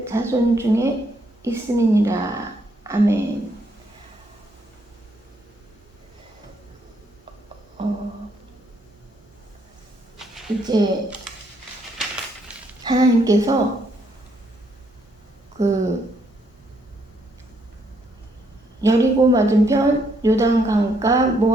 자손 중에 있음이니라. 아멘. 이제 하나님께서 여리고 맞은편 요단강가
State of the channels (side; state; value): both; normal; correlation 0.72